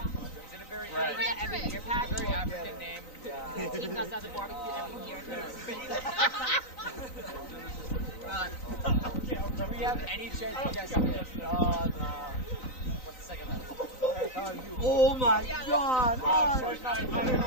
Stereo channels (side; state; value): right; late; 3.9 ms